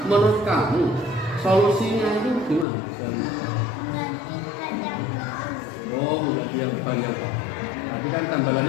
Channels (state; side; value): drops out; right; at 2.7 s